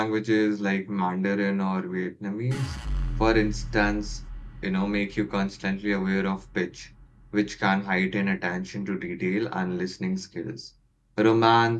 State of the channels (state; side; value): identical; both; correlation 1.00